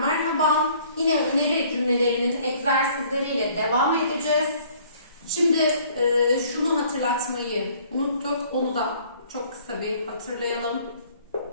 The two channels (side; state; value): both; inverted; correlation -0.57